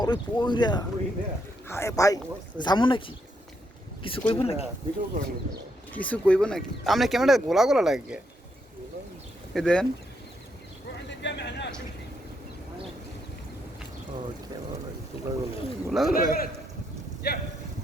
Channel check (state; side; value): normal; both; correlation 0.77